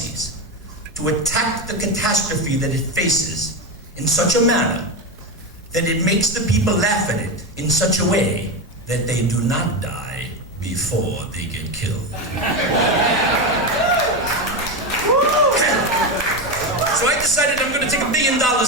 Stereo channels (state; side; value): normal; both; correlation 0.14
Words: to attack the catastrophe that it faces in such a manner that it makes the people laugh at it in such a way that they do not die before they get killed. So I decided I'm going to take $1 billion